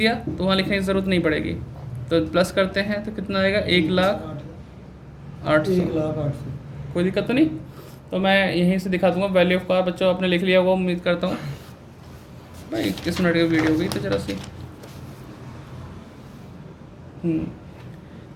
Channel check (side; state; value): both; identical; correlation 1.00